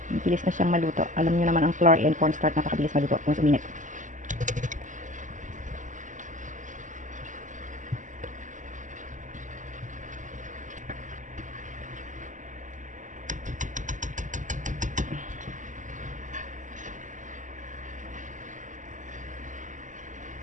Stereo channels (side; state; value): left; late; 0.37 ms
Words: Bilis na siyang maluto. Alam niyo naman ang flour and cornstarch napakabilis maluto kung uminit.